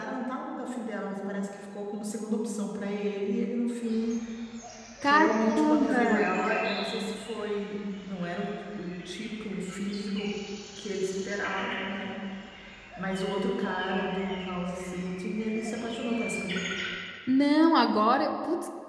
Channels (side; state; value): both; identical; correlation 1.00